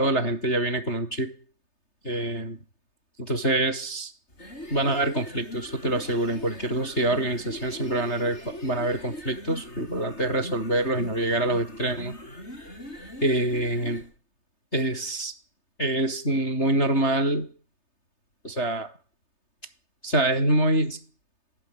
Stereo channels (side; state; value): right; late; 3.3 ms